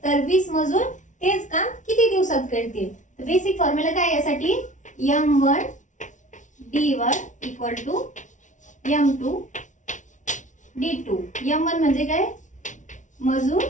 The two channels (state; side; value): late; right; 0.37 ms